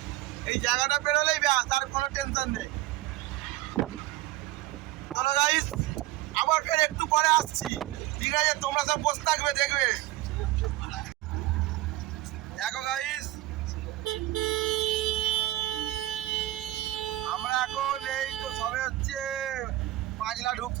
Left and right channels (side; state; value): left; quieter; 16.7 dB